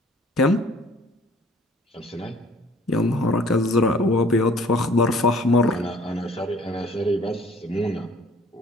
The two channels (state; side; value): normal; both; correlation 0.55